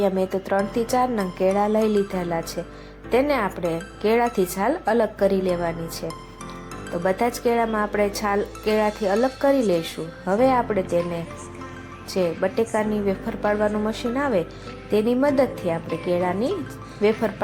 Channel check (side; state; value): both; identical; correlation 1.00